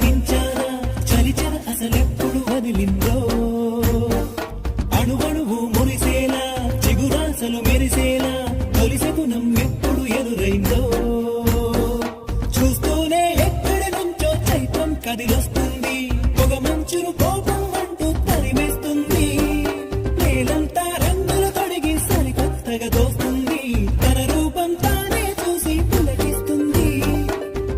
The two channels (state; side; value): identical; both; correlation 1.00